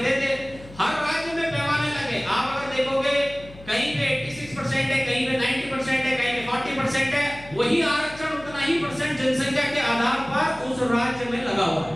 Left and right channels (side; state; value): left; noise; hum, 19 dB below the sound